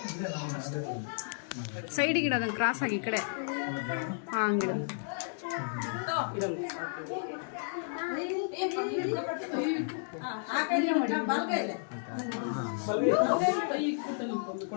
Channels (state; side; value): silent; right; digital silence